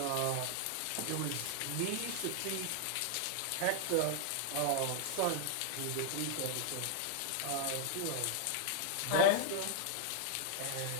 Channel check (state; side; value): different; both; correlation 0.00